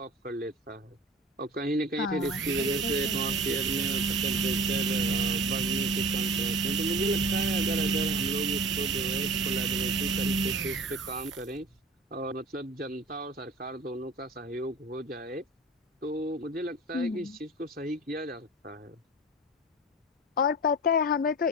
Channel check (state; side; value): normal; both; correlation 0.37